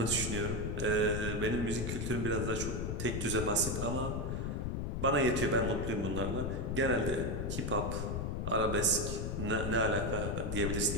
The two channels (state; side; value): noise; left; rumble, 1 dB below the sound